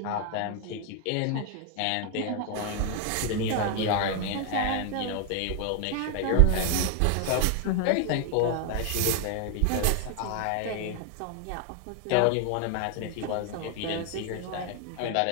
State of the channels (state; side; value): different; both; correlation 0.00